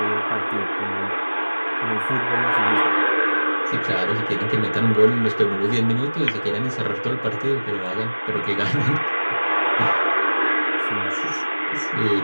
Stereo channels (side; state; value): both; inverted; correlation -1.00